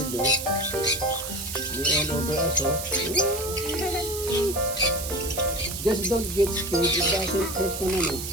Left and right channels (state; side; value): noise; right; hiss, 7 dB below the sound